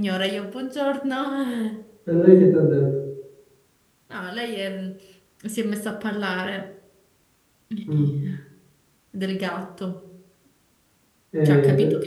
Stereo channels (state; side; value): identical; both; correlation 1.00